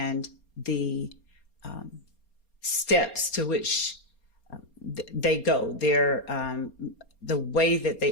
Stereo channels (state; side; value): late; right; 4.3 ms